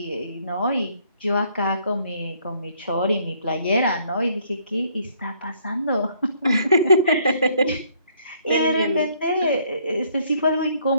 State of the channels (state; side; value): inverted; both; correlation -0.65